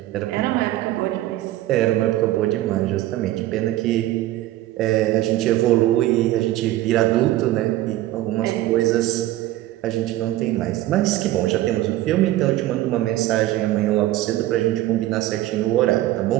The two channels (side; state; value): left; quieter; 15.4 dB